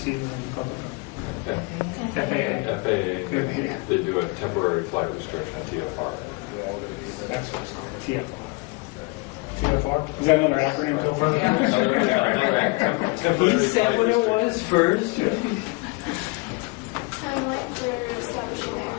and call it. FAA. They do a temporary flight restriction at TFR. That's what it's called, TFR. TFR? Is that another acronym? He said what it was first. Timeline for establishing the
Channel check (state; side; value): quieter; right; 26.7 dB